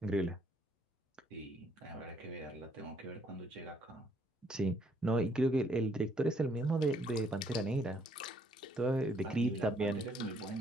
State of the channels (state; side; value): normal; both; correlation 0.67